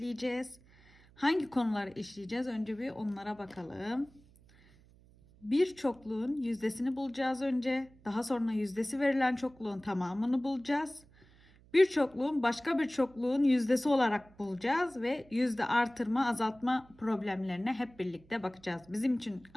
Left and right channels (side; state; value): right; noise; hum, 27 dB below the sound